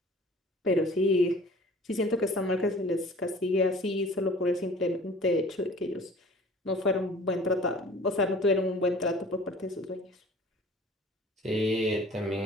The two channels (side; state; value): both; normal; correlation 0.47